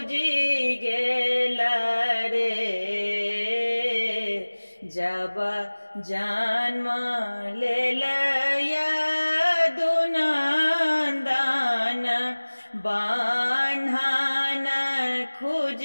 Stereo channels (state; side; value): inverted; both; correlation -1.00